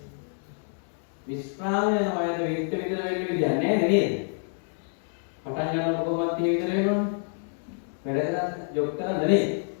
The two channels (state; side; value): silent; right; 57 dB below the other